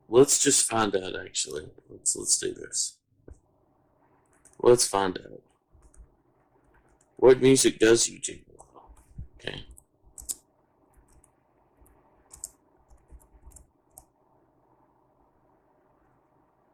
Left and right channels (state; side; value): identical; both; correlation 1.00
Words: let's just find out. Actually, let's do this. Let's find out what music does YouTube allow. Okay.